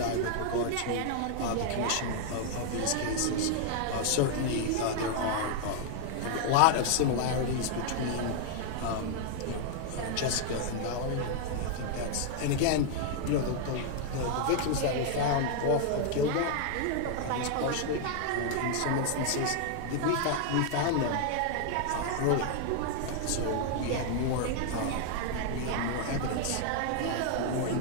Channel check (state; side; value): different; both; correlation 0.00